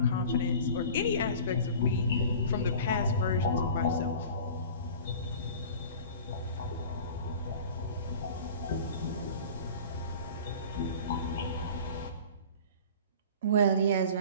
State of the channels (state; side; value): inverted; both; correlation -0.41